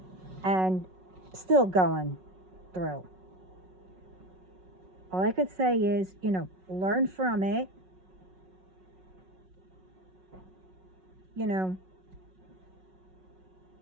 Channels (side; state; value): left; late; 5.4 ms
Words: And still going through. All I could say is, learn from it.